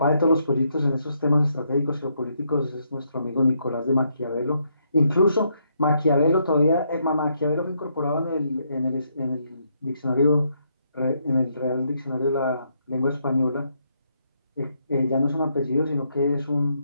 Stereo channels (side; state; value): both; inverted; correlation -0.75